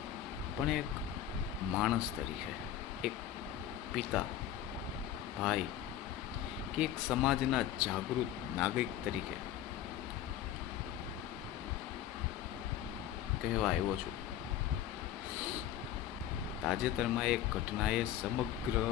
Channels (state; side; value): quieter; right; 11.2 dB